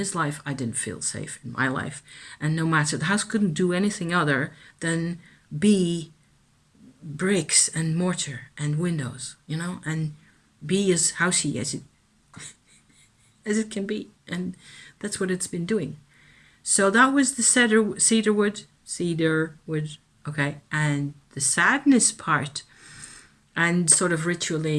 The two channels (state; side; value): identical; both; correlation 1.00